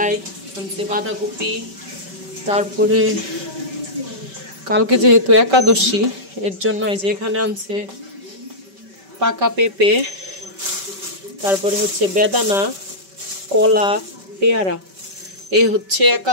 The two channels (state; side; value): late; left; 5.2 ms